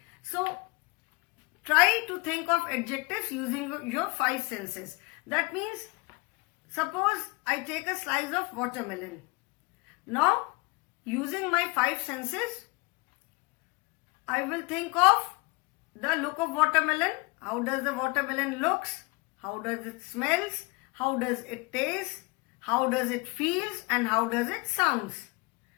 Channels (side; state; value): right; quieter; 26.5 dB